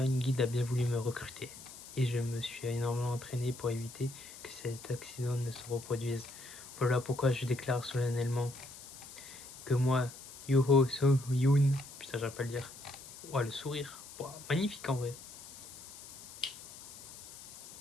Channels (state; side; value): noise; left; hiss, 15 dB below the sound